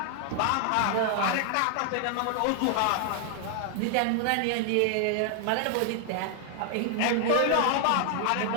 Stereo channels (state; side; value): different; both; correlation 0.00